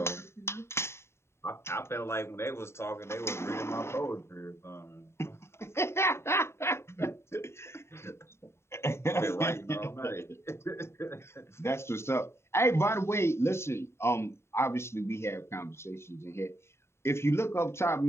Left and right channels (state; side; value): late; right; 0.13 ms